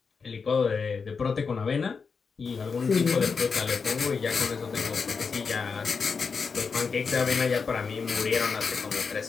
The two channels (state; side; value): quieter; right; 5.3 dB